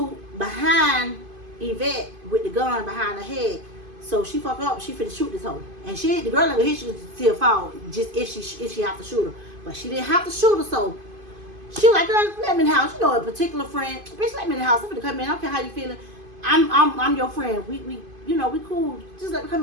behind Yvette with the gun behind her head. So she fuck up. She finna shoot this hoe, and the girl never hit. She could still fall just if she have to shoot her, but she didn't have to shoot her. So she was like, girl, let me in the house. A particular friend, bitch, let me in the house. I'm finna come in. I don't care how you feeling. I'm your friend. We cool. Just let me come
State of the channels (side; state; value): left; late; 2.5 ms